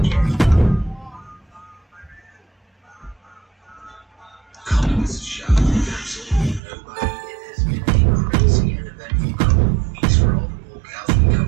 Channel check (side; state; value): left; drops out; at 6.6 s